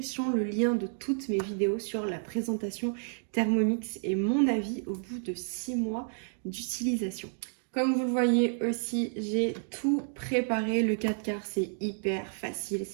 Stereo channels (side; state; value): left; silent; digital silence